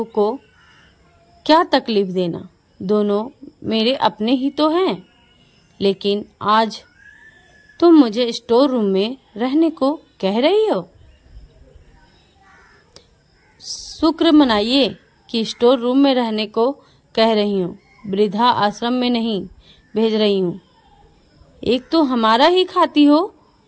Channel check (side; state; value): both; identical; correlation 1.00